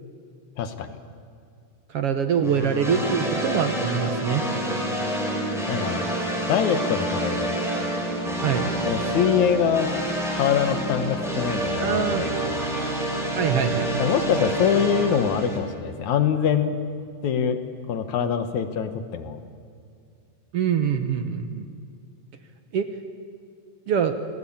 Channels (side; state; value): both; normal; correlation 0.04